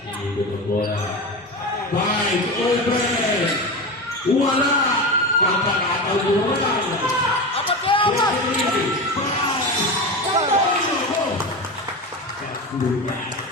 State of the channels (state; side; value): normal; both; correlation 0.23